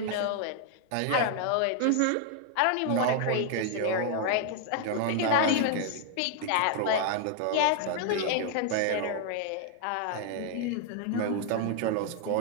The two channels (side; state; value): both; different; correlation 0.00